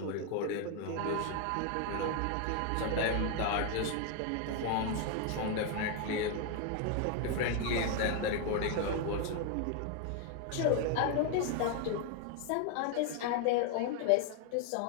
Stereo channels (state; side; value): different; both; correlation 0.01